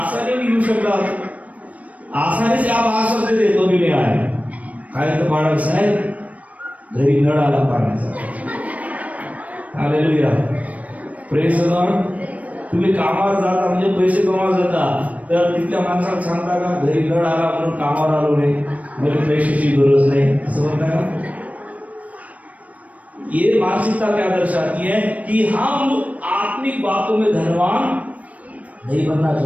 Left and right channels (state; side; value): late; left; 0.068 ms